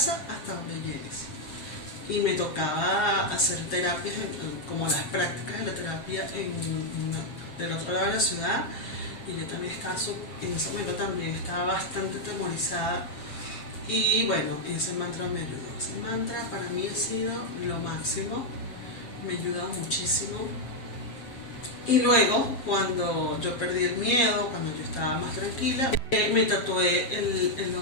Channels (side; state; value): right; late; 7.5 ms